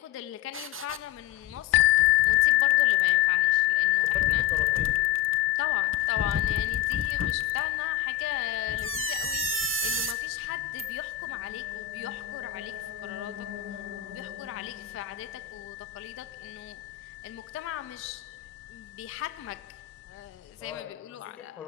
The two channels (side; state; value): right; quieter; 12.6 dB